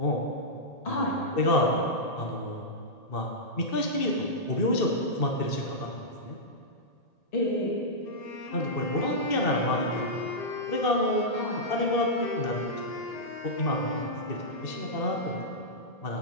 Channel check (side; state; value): right; late; 1.8 ms